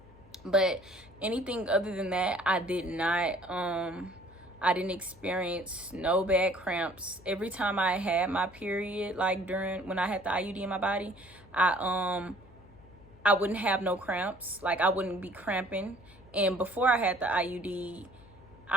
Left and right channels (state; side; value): noise; left; hum, 24 dB below the sound